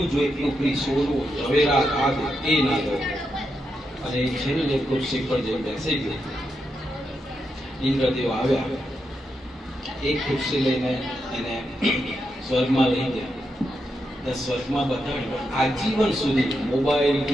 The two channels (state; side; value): normal; both; correlation 0.84